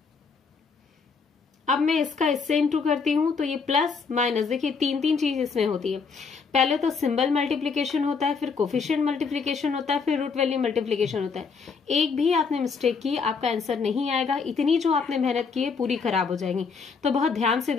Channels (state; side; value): quieter; right; 5.3 dB